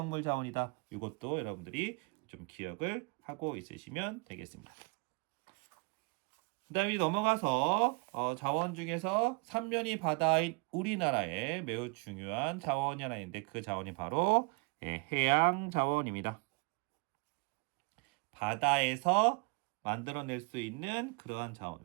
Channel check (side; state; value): left; quieter; 32.7 dB